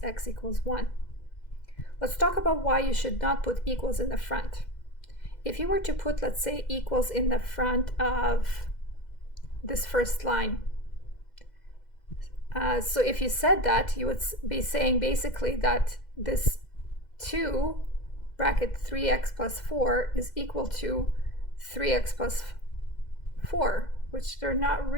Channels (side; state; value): right; late; 2.0 ms